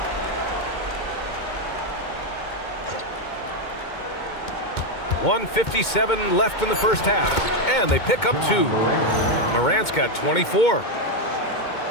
.157 left in the first half. And they pick up 2. Morant's got 24.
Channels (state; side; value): late; right; 2.2 ms